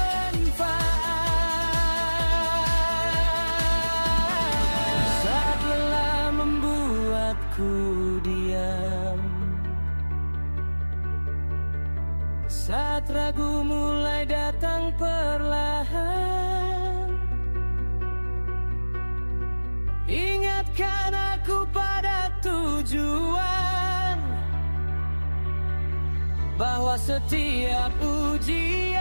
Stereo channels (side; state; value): both; inverted; correlation -1.00